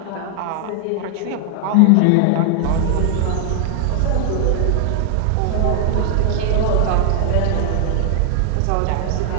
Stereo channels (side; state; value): both; different; correlation 0.00